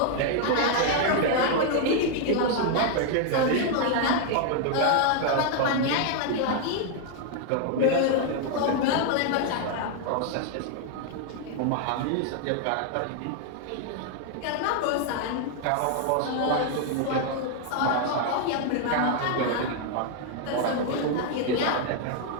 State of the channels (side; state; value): both; different; correlation 0.00